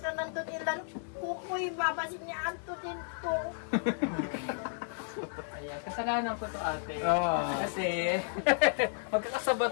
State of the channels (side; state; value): right; silent; 56 dB below the other